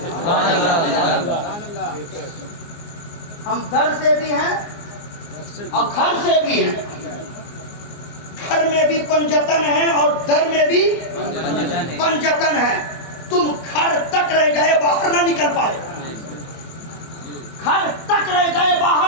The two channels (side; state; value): right; late; 24 ms